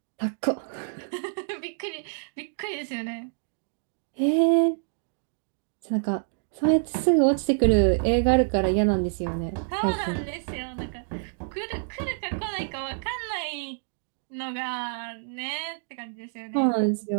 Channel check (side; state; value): left; silent; digital silence